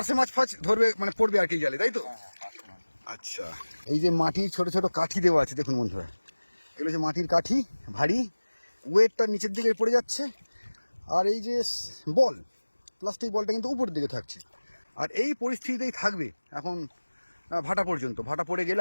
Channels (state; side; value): inverted; both; correlation -1.00